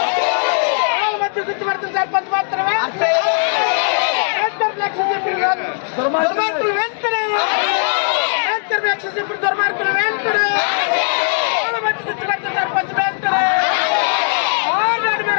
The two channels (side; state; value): right; silent; 59 dB below the other